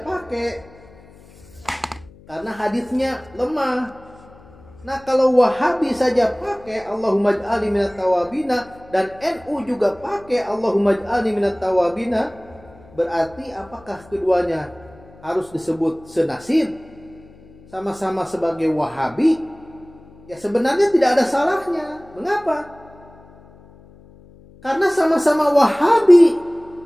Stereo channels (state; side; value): noise; left; hum, 24 dB below the sound